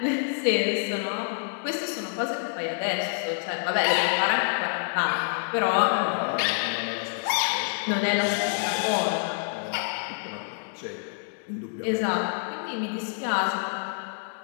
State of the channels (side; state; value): right; silent; digital silence